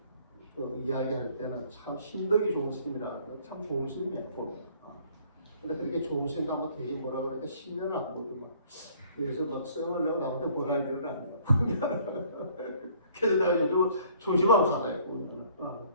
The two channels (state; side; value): inverted; both; correlation -0.58